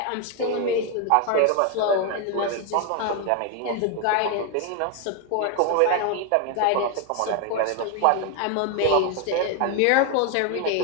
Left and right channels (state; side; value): different; both; correlation 0.01